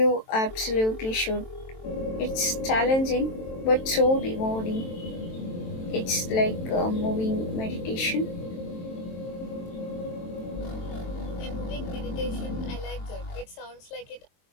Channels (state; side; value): late; right; 23 ms